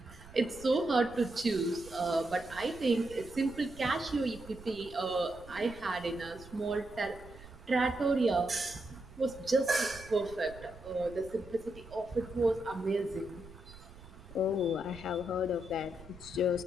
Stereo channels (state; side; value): noise; right; rumble, 18 dB below the sound